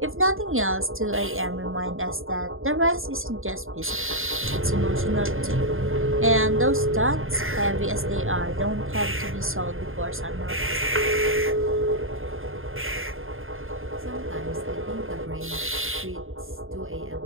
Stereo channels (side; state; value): left; late; 0.60 ms